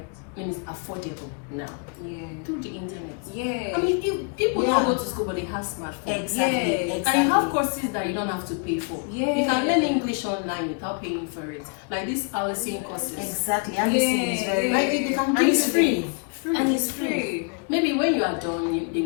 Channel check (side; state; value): right; quieter; 36.4 dB